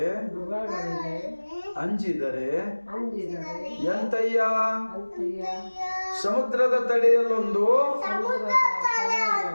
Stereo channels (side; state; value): both; inverted; correlation -1.00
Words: ಅಂಜಿದರೆ ಎಂತಯ್ಯ. ಸಮುದ್ರದ ತಡೆಯಲ್ಲೊಂದು